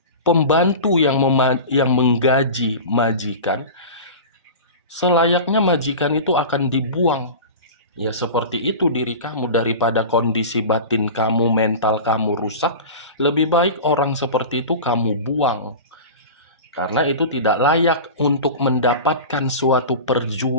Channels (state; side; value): inverted; both; correlation -0.31